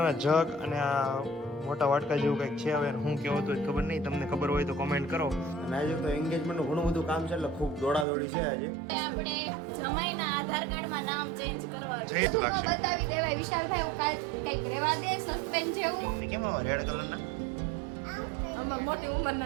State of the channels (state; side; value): drops out; left; at 8.1 s